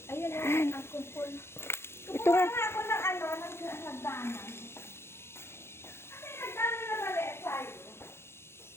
Ayun na, ang kumpul. Ito nga. Ako ng ano, ng hagdanan. Kasi hagdanan na mali tayo.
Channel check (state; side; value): late; right; 0.12 ms